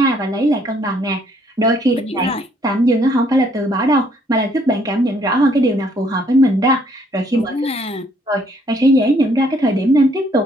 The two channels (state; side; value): normal; both; correlation 0.66